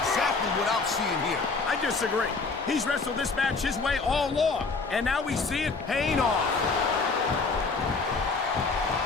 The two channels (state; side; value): quieter; right; 4.2 dB